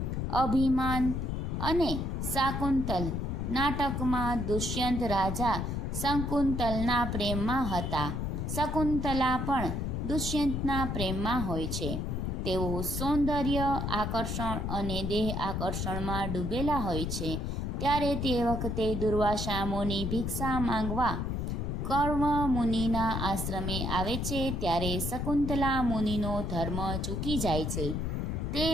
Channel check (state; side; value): noise; left; rumble, 2 dB below the sound